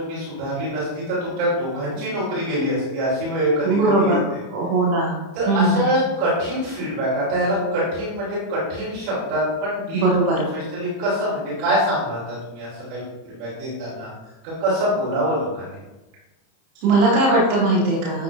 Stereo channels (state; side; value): late; left; 30 ms